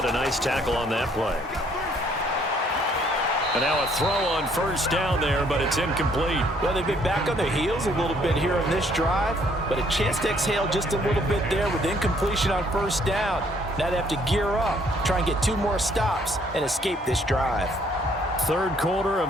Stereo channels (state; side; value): normal; both; correlation 0.64